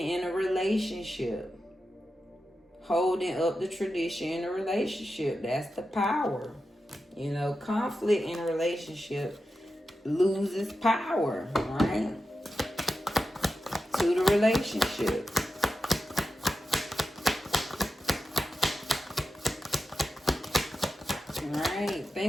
a relationship, holding up the tradition in a relationship. That's the power. You know, conflict in a relationship loses power, right? To the relationship. Right.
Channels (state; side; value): normal; both; correlation 0.91